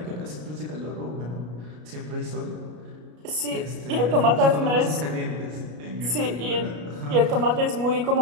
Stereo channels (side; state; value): left; late; 33 ms